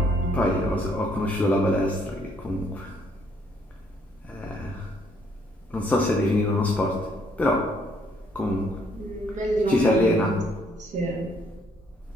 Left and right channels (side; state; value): both; normal; correlation 0.67